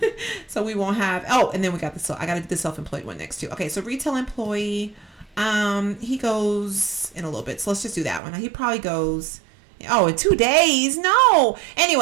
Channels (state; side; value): drops out; left; at 8.2 s